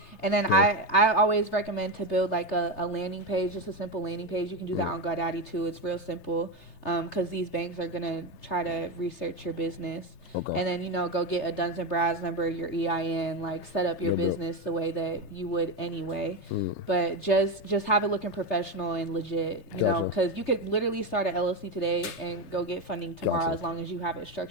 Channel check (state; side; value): late; right; 3.3 ms